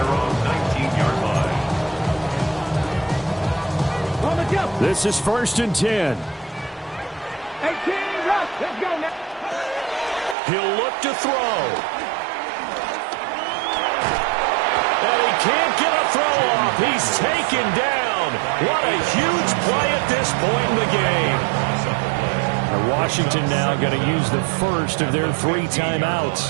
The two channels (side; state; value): left; drops out; at 10.4 s